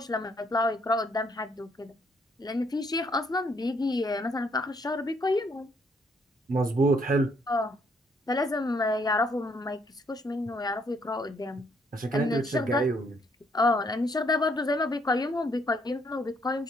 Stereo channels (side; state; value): both; normal; correlation 0.69